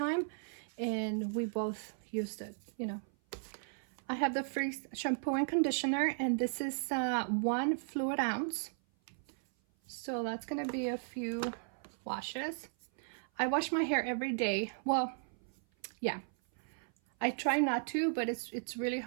and we both used it, you know. I have the Freeze shampoo and conditioner, and this is 1 fluid ounce. So that's gonna be a few washes. I wash my hair every day. Well, yeah, I try not to, but it's really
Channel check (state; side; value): silent; left; 54 dB below the other